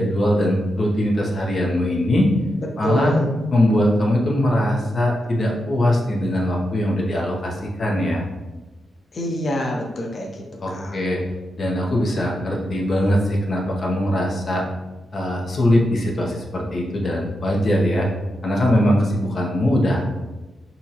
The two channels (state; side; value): normal; both; correlation 0.86